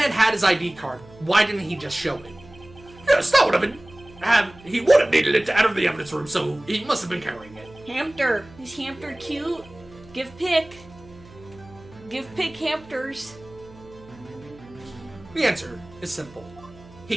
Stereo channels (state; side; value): noise; right; hum, 22 dB below the sound